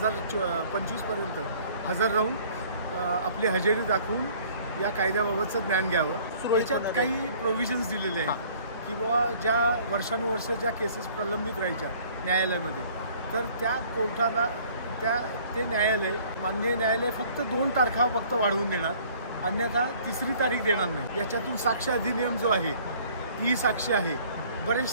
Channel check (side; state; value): both; inverted; correlation -0.55